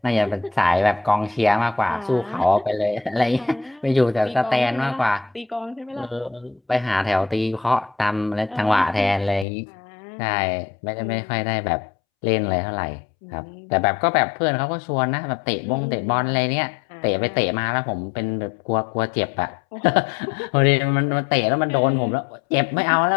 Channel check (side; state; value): right; drops out; at 9.5 s